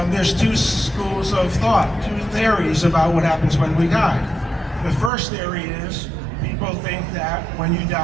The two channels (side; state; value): left; drops out; at 5.1 s